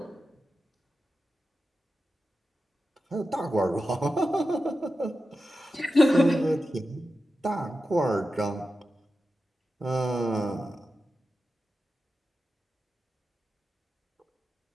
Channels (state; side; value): normal; both; correlation 0.91